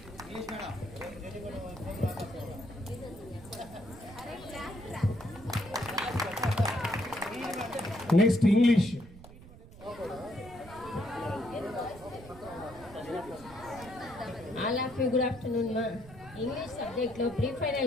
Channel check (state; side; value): noise; right; rumble, 18 dB below the sound